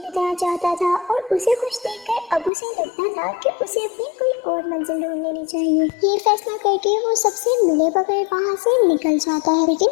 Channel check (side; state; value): right; drops out; at 2.5 s